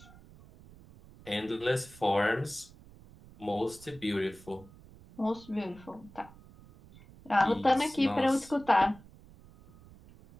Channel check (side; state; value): right; noise; rumble, 22 dB below the sound